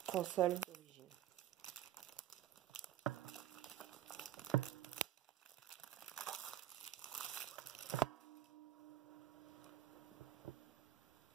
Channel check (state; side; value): quieter; left; 12.5 dB